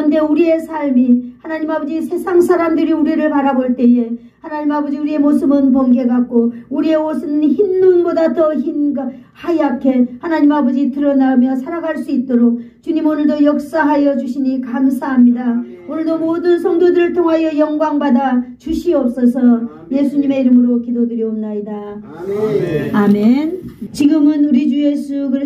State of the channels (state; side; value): identical; both; correlation 1.00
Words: 우리의 삶이 하나님 아버지 세상 사람들이 우리를 바라볼 때에 하나님 아버지 우리의 모습은 번개 같고 우리의 옷은 흰 눈보다 더 하얗게 하나님 아버지 드러나며 살아갈 수 있도록 주님 오늘도 역사하여 주시니 감사합니다. 오늘도 모든 성도들을 통하여 영광 받아 주시옵소서. 예수님의 이름으로 기도드리옵나이다. 아멘. 아멘. 지금은 우리 주 예수